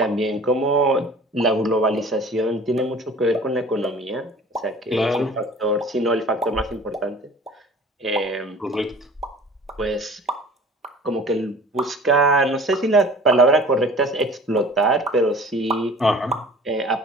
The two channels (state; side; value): normal; both; correlation 0.45